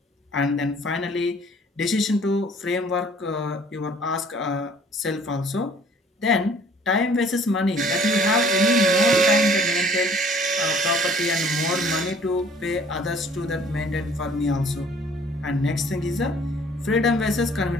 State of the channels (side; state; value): both; normal; correlation 0.55